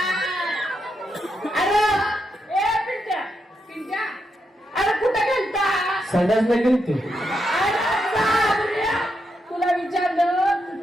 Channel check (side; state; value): both; normal; correlation 0.83